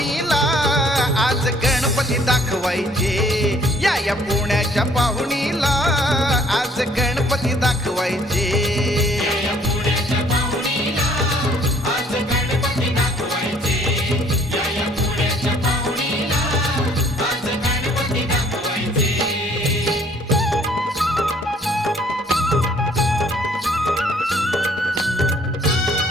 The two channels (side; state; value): both; normal; correlation 0.60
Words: आज गणपती दाखवायचे. या पुण्याच्या पाहुणीला आज गणपती दाखवायचे.